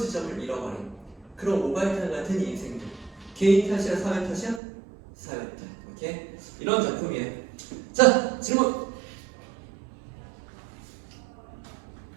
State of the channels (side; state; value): left; drops out; at 4.6 s